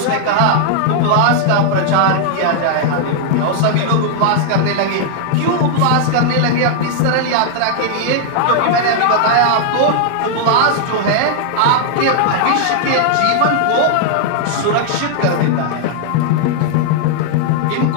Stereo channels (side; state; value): both; different; correlation -0.01